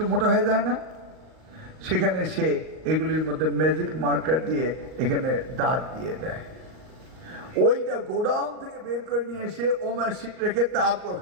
মোটা হয়ে যায় না? সেখানে সে এগুলির মধ্যে ম্যাজিক মার্কার দিয়ে এখানে দাগ দিয়ে দেয়। ওইটা গোডাউন থেকে বের করে নিয়ে এসে ওমার শিট রেখে তারপর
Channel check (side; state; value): left; late; 38 ms